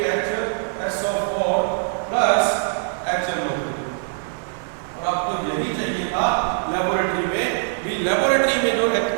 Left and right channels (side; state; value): left; silent; 55 dB below the other